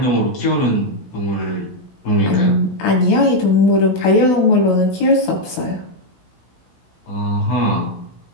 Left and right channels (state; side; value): late; right; 16 ms